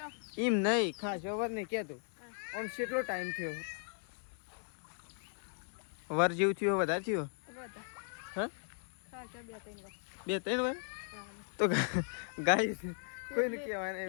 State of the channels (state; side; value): silent; right; 53 dB below the other